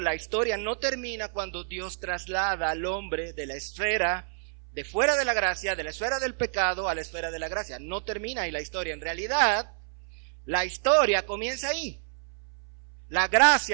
historia no termina cuando Dios traslada al hombre de la esfera de fuera de la gracia, de la esfera del pecado a la esfera de la gracia. No termina ahí la historia. En realidad, la historia comienza ahí. La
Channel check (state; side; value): silent; left; 59 dB below the other